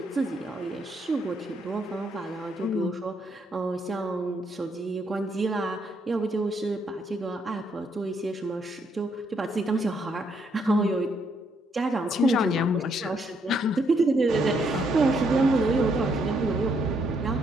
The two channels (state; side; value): normal; both; correlation 0.73